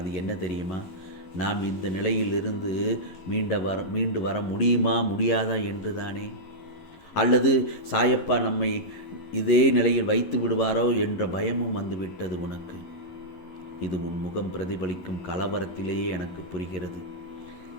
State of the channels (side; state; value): right; late; 11 ms